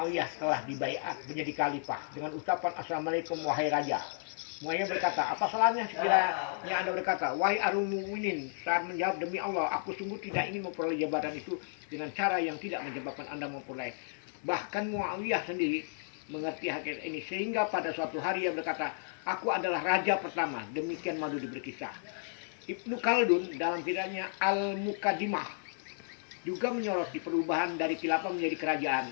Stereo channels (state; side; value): silent; right; 56 dB below the other